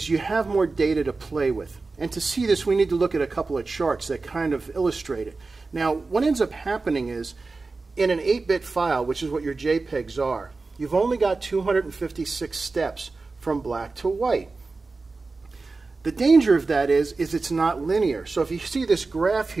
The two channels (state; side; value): quieter; left; 3.8 dB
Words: have more data to play with. And to see this, we need to look at a couple of charts that kind of illustrate it. Now, what ends up happening is, in an 8-bit file, which is what your JPEGs are, you've only got 256 steps from black to white. The danger of that is it's not linear. So if you see this graph